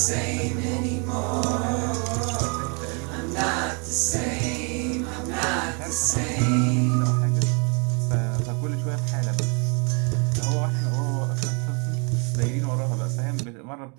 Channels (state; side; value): quieter; left; 35.1 dB